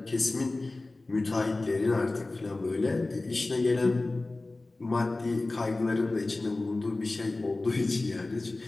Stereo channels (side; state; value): right; quieter; 3.1 dB